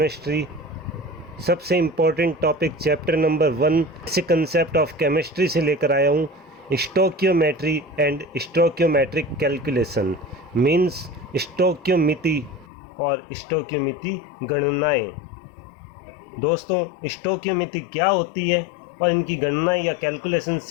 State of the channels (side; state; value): right; drops out; at 12.7 s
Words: सबसे इम्पोर्टेंट टॉपिक चैप्टर नंबर 1 से कंसेप्ट ऑफ केमिस्ट्री से लेकर आया हूँ। Stoichiometry and stoichiometric calculation means स्टोक्योमिति और स्टोक्योमिति गणनाएं। दोस्तों, स्टोक्योमिति क्या होती है और इनकी गणनाएं या कैलकुलेशंस